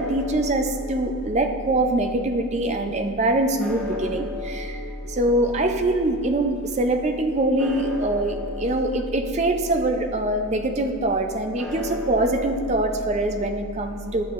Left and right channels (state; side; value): normal; both; correlation 0.29